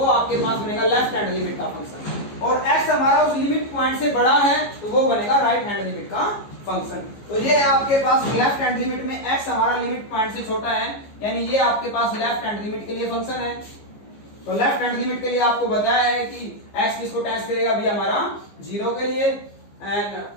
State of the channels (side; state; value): right; late; 15 ms